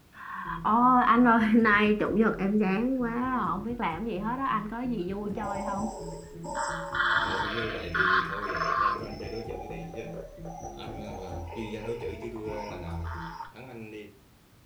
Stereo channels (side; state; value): both; identical; correlation 1.00